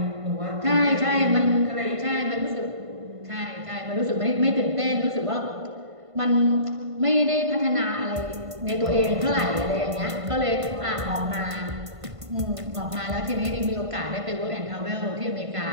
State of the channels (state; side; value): late; left; 1.5 ms